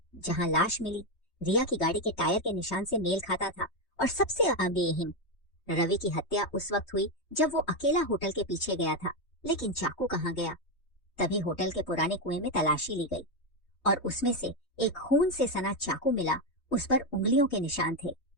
जहां लाश मिली रिया की गाड़ी के टायर के निशान से मेल खाता था। और सबसे अहम, रवि की हत्या उस वक्त हुई जब वो अकेला होटल के पीछे गया था। लेकिन चाकू कहाँ गया? तभी होटल के पुराने कुएं में तलाशी ली गई और उसमें से एक खून से सना चाकू मिला। उस पर उंगलियों के निशान थे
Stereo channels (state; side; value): late; right; 3.2 ms